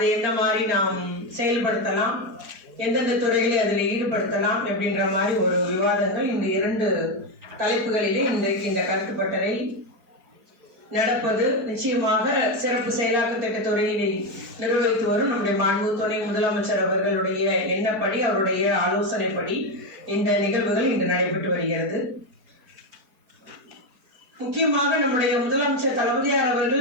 எந்த மாதிரி நாம் செயல்படுத்தலாம், எந்தெந்த துறைகளை அதில் ஈடுபடுத்தலாம் அப்படின்ற மாதிரி ஒரு விவாதங்கள் இந்த 2 தலைப்புகளிலே இன்றைக்கு இந்த கருத்துப்பட்டறை நடப்பது. நிச்சயமாக சிறப்பு செயலாக்க திட்டத்துறையை நிர்வகித்து வரும் நம்முடைய மாண்பு துணை முதலமைச்சர் அவர்களுடைய எண்ணப்படி, அவருடைய ஆலோசனைப்படி இந்த நிகழ்வுகள் இன்று நடைபெற்று வருகிறது. முக்கியமாக நம்முடைய முதலமைச்சர் தளபதியார்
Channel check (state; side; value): late; left; 4.5 ms